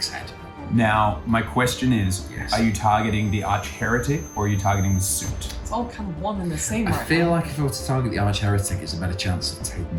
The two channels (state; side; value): identical; both; correlation 1.00